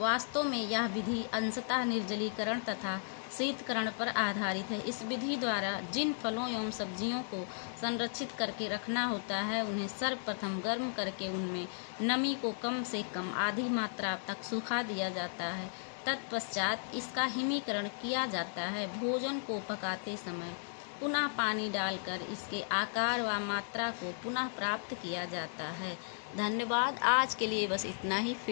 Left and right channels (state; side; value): silent; right; digital silence